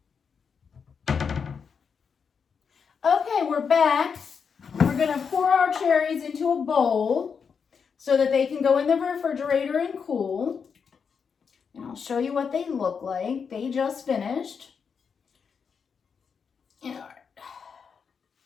Okay, we're back. We're gonna pour our cherries into a bowl. so that they can go in the refrigerator and cool. And I'll show you what they look like. They just finished. All right.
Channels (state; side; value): quieter; right; 6.2 dB